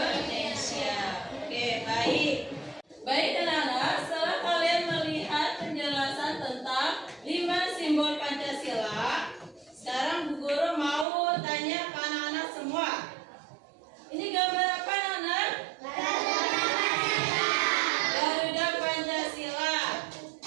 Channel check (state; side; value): drops out; left; at 11.1 s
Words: Oke, baik. Baik anak-anak, setelah kalian melihat penjelasan tentang 5 simbol Pancasila, sekarang Bu Guru mau tanya ke anak-anak semua. Ini gambar apa anak-anak? Garuda Pancasila.